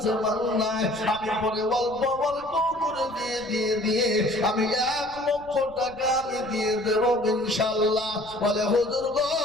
মাল নাই, আমি পরে অল্প অল্প করে দিয়ে আমি 1 লক্ষ টাকা আমি দিয়ে দেব ইনশাআল্লাহ। বলে হুজুর গো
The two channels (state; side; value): noise; left; rumble, 23 dB below the sound